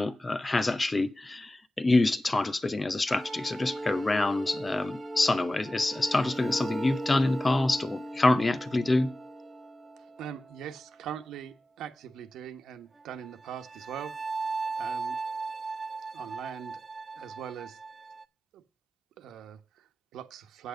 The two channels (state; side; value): normal; both; correlation 0.95